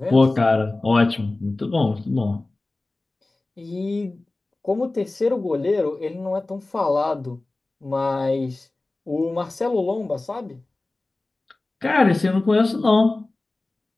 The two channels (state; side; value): quieter; right; 3.0 dB